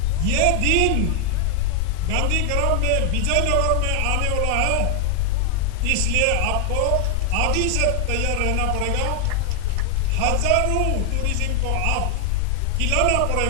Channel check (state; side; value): different; both; correlation 0.00